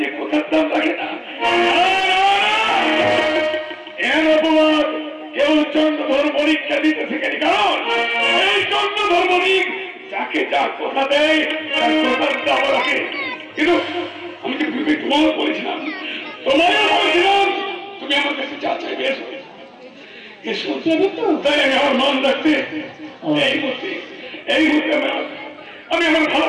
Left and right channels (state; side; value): identical; both; correlation 1.00